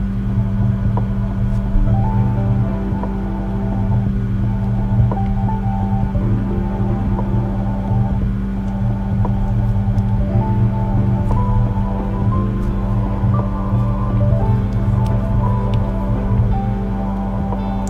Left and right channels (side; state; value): both; identical; correlation 1.00